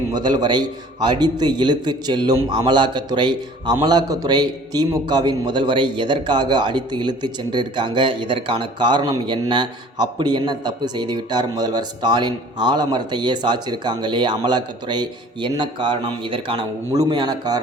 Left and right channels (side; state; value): both; normal; correlation 0.49